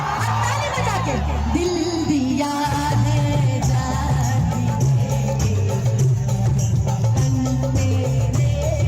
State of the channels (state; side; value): identical; both; correlation 1.00